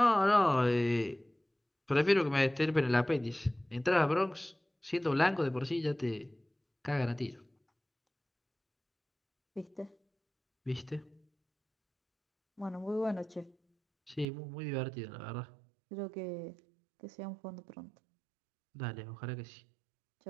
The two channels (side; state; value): left; drops out; at 14.2 s